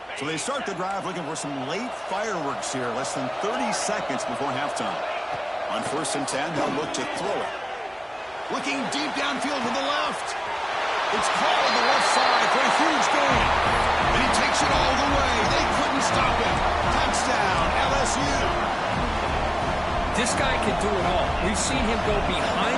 So they start the drive looking for some late fireworks here, less than 30 seconds before halftime. On 1st and 10, they'll look to throw it. Looking deep downfield to the left. It's called on the left side for a huge gain. And he takes it all the way. They couldn't stop him. Touchdown, LSU. This guy can do it all. We've seen him go behind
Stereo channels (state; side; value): identical; both; correlation 1.00